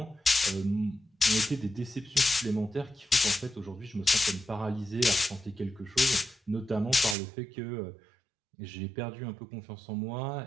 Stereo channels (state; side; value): drops out; left; at 7.2 s